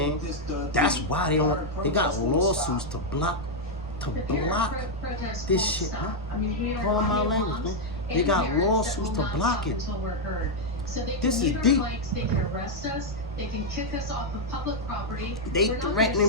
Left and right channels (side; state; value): both; normal; correlation -0.01